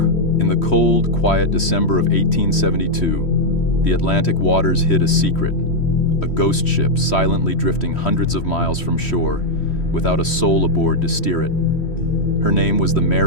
In the cold, quiet December of 1872, the Atlantic waters hid a secret. A ghost ship silently drifting hundreds of miles from shore, without a soul aboard to steer it. Her name was the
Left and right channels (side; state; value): right; late; 3.1 ms